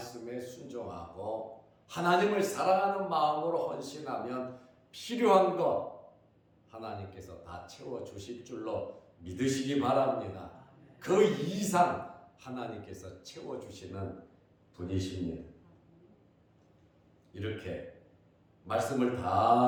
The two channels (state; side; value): identical; both; correlation 1.00